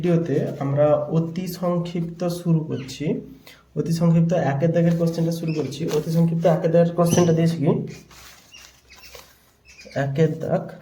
আমরা অতি সংক্ষিপ্ত শুরু করছি। অতি সংক্ষিপ্ত 1-এর দাগের কোশ্চেনটা শুরু করছি। অতি সংক্ষিপ্ত 1-এর দাগের কোশ্চেনটা দিয়েছি কি 1-এর দাগ,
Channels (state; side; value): identical; both; correlation 1.00